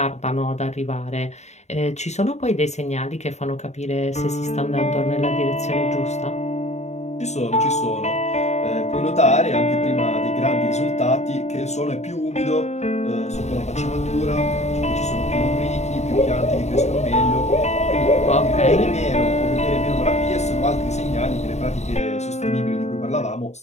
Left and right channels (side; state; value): right; late; 0.32 ms